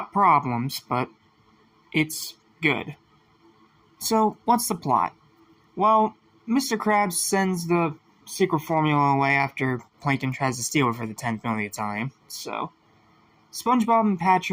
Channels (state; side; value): identical; both; correlation 1.00